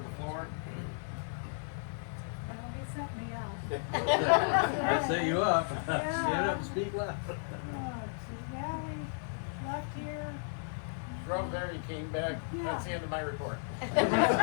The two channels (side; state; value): right; silent; 55 dB below the other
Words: the floor. Well, he set me up. I set you up. Stand up and speak loud. Yeah, we left here. Drove there, he came back, that's the end of my report. Good,